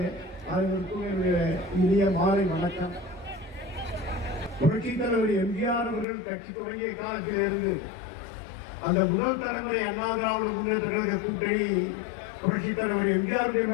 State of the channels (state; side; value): drops out; right; at 6.1 s